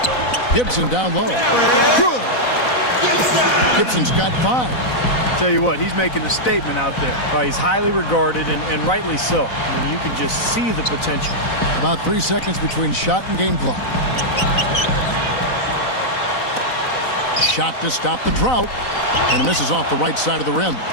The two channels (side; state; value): right; late; 4.0 ms